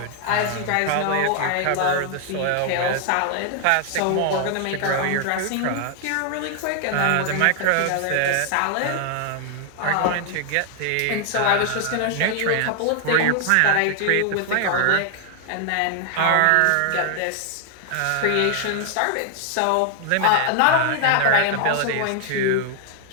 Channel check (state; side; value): different; both; correlation 0.00